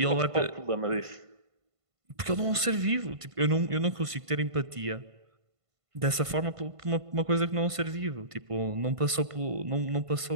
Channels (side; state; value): left; late; 1.5 ms